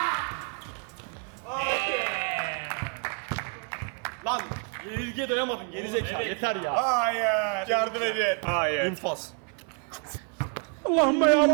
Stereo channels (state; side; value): quieter; left; 38.6 dB